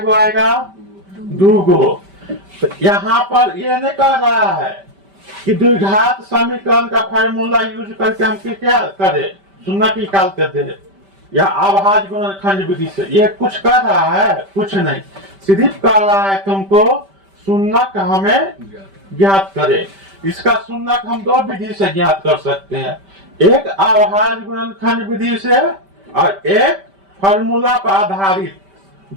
आएगा, 2 गो। तो यहाँ पर ये नहीं कह रहा है कि द्विघात समीकरण का फार्मूला यूज करके हम क्या करे, शून्यक निकालते थे या अभाज्य गुणनखंड विधि से। ये कुछ कर रहा है, कुछ नहीं, सिर्फ कह रहा है तुमको शून्यक हमें ज्ञात करे। इसका शून्यक हम 2 विधि से ज्ञात कर सकते हैं, एक अभाज्य गुणनखंड विधि से और एक फार्मूला पर आधारित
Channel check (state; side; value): late; left; 5.1 ms